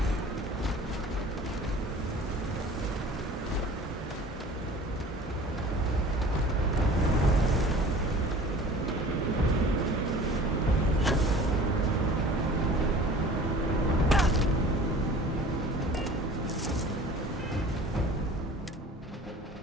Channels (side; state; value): both; normal; correlation 0.44